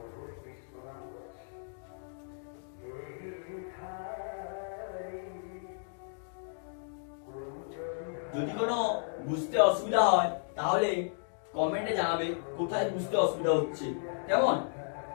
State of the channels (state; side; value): silent; right; digital silence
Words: যদি কোনো বুঝতে অসুবিধা হয় তাহলে কমেন্টে জানাবে কোথায় বুঝতে অসুবিধা হচ্ছে। কেমন?